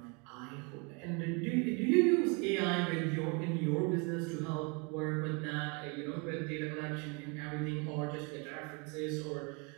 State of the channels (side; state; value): left; quieter; 32.4 dB